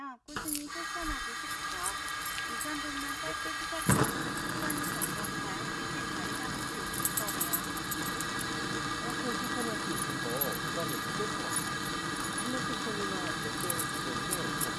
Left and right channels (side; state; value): both; identical; correlation 1.00